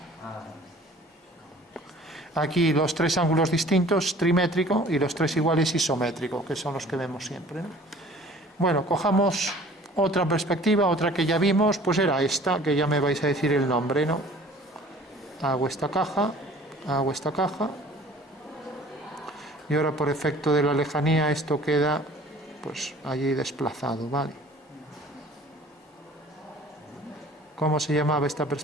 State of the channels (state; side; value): normal; both; correlation 0.49